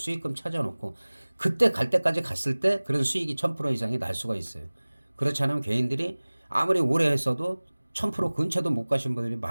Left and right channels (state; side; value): inverted; both; correlation -1.00